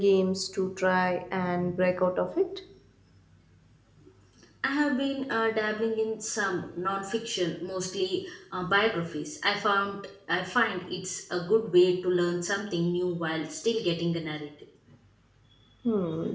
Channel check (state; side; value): identical; both; correlation 1.00